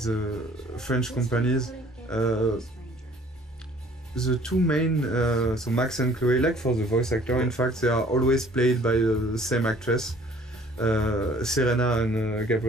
French companies. The two main, so Max and Chloe, like for the voice actor, in fact, they are always played by the same actress, Serena and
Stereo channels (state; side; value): normal; both; correlation 0.55